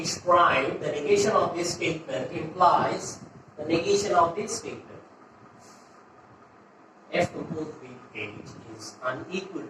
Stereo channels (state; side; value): identical; both; correlation 1.00